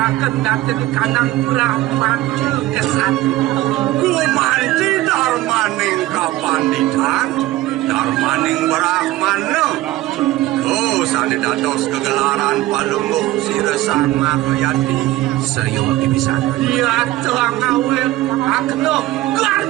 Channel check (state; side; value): quieter; left; 16.6 dB